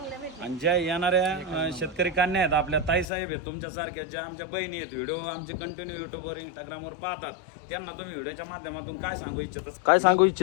भेटल्या. आणि ज्या येणाऱ्या शेतकरी कन्या आहेत आपल्या ताई साहेब आहेत तुमच्यासारख्या, ज्या आमच्या बहिणी आहेत, व्हिडिओ आमचे कंटिन्यू युट्यूबवर इंस्टाग्रामवर पाहतात, त्यांना तुम्ही व्हिडिओच्या माध्यमातून काय सांगू इच्छिता? काय सांगू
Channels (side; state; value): right; drops out; at 3.1 s